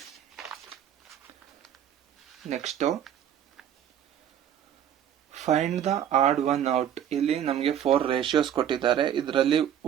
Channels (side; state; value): left; quieter; 9.9 dB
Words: Next find the odd one out. ಇಲ್ಲಿ ನಮಗೆ 4 ರೇಷಿಯೋಸ್ ಕೊಟ್ಟಿದ್ದಾರೆ. ಇದರಲ್ಲಿ